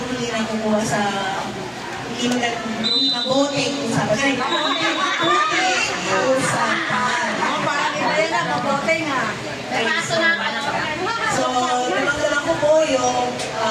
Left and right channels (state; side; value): identical; both; correlation 1.00